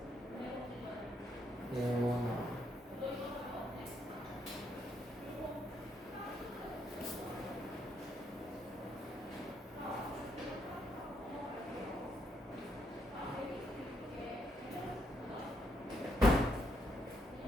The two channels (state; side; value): normal; both; correlation 0.75